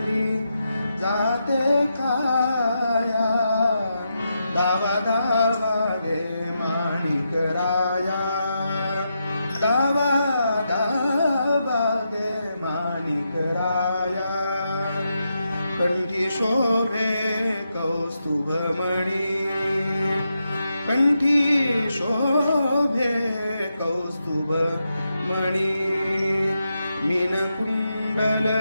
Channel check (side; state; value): both; inverted; correlation -0.85